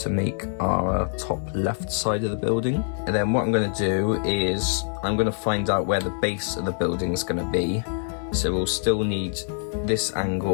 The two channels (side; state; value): right; silent; digital silence